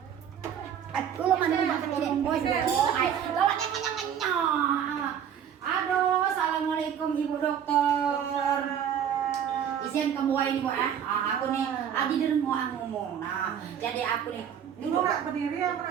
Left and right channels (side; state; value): left; quieter; 8.8 dB